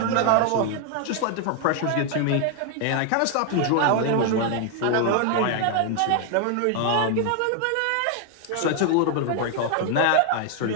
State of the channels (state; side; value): different; both; correlation 0.00